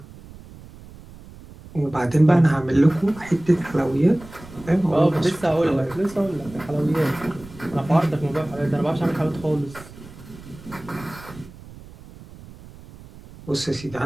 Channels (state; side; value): noise; right; rumble, 19 dB below the sound